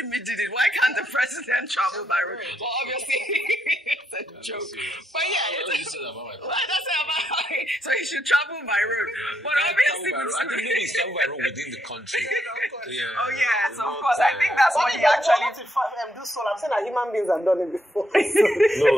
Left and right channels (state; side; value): normal; both; correlation 0.77